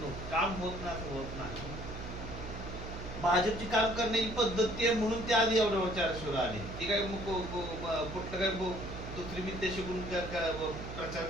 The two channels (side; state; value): right; noise; hum, 9 dB below the sound